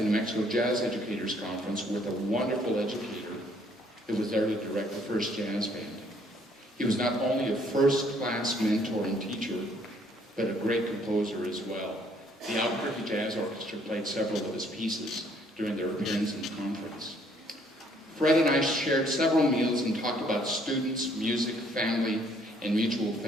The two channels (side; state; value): both; normal; correlation 0.64